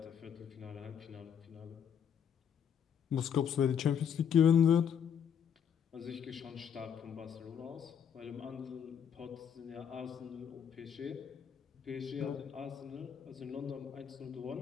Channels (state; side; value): quieter; right; 8.1 dB